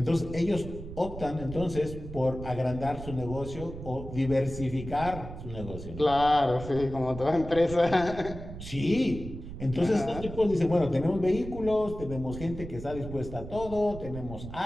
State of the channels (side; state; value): right; noise; rumble, 11 dB below the sound